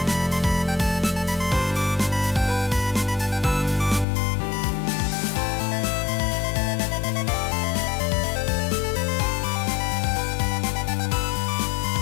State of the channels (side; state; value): right; drops out; at 4.0 s